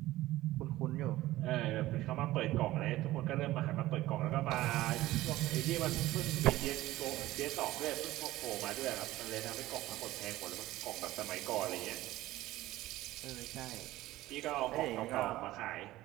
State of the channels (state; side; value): quieter; left; 16.5 dB